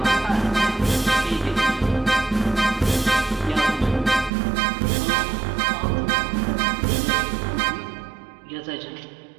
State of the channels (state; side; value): drops out; left; at 4.3 s